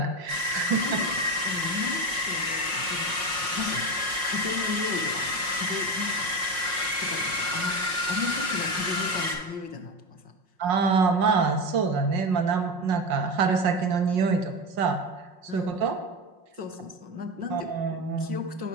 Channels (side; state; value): left; late; 5.6 ms